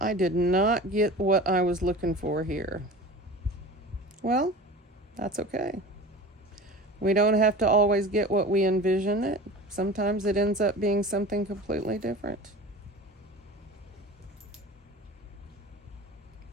did not get what I was looking for here. Well, that's okay. We don't have to always get what we envision it. Sometimes it ends up being something completely different.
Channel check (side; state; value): both; normal; correlation 0.36